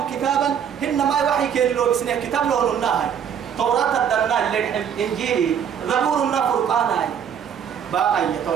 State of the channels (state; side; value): quieter; left; 8.3 dB